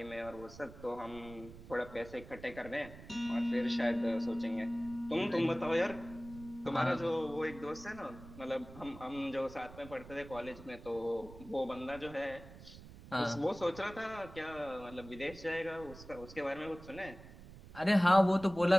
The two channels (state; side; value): noise; right; rumble, 16 dB below the sound